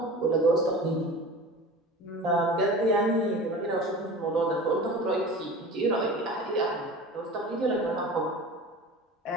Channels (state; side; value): normal; both; correlation 0.36